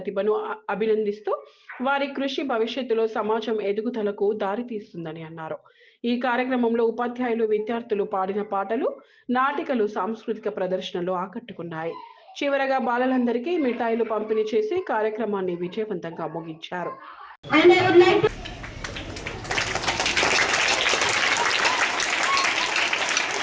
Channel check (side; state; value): both; identical; correlation 1.00